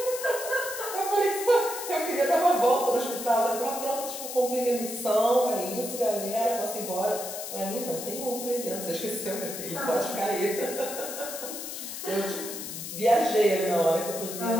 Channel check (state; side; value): noise; left; hiss, 8 dB below the sound